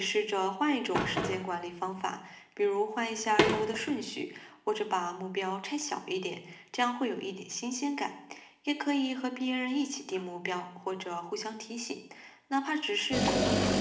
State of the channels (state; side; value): identical; both; correlation 1.00